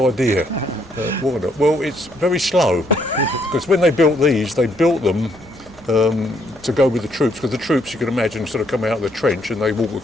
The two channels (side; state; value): both; normal; correlation 0.71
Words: Why not? Well, it's very slow, because when they built these, they built them to go with the troops, because the troops, you can imagine, sort of come out of the trench and they walk